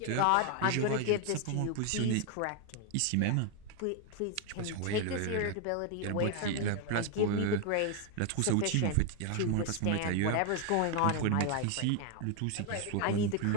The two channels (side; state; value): both; different; correlation 0.01